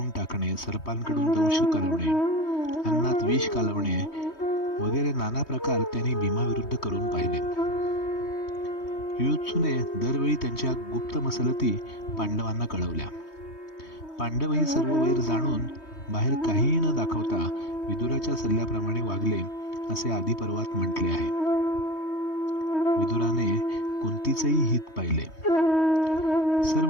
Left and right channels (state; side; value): late; right; 3.2 ms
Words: टाकणे, सर्पांकडून दंश कालवणे, अन्नात विष कालवणे वगैरे नाना प्रकार त्यांनी भीमाविरुद्ध करून पाहिले. युयुत्सूने दरवेळी त्यांच्या गुप्त मसलती पांडवांना कळवल्या. पांडवही सर्व वैर जाणून बाहेर काहीही न दाखवता विदुराच्या सल्ल्याप्रमाणे वागले असे आदी पर्वात म्हटले आहे. विदुराने कुंतीचेही हित पाहिले.